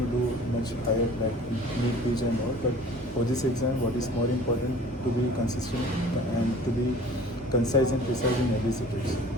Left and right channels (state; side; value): normal; both; correlation 0.47